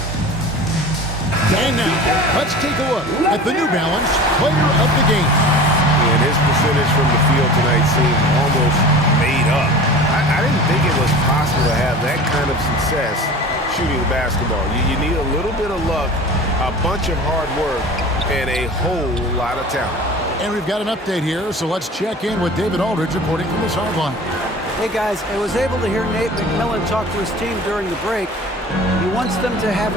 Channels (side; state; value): both; normal; correlation 0.38